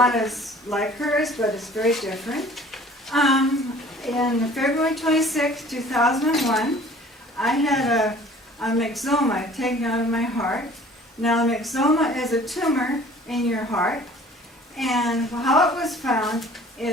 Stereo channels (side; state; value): both; normal; correlation 0.50